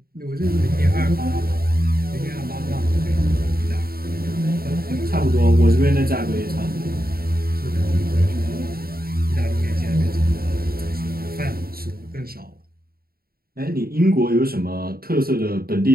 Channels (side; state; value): left; late; 0.44 ms